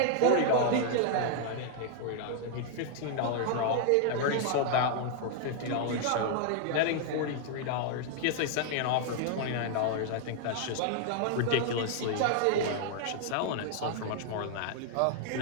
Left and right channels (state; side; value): different; both; correlation 0.00